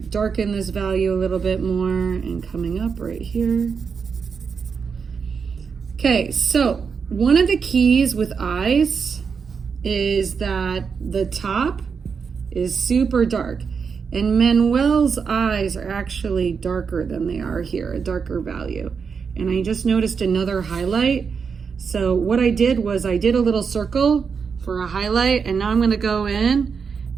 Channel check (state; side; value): quieter; left; 5.9 dB